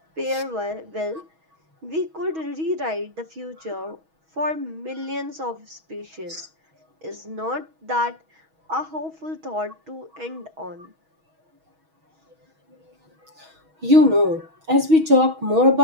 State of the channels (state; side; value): late; left; 6.3 ms